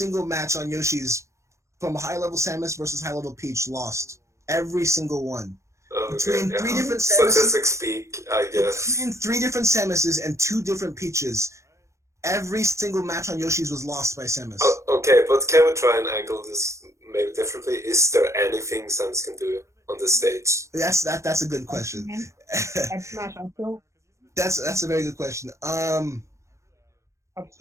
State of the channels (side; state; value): left; late; 0.14 ms